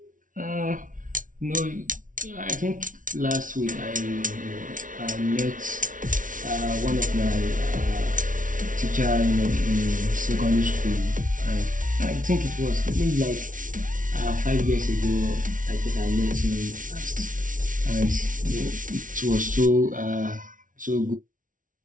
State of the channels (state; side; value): late; left; 0.38 ms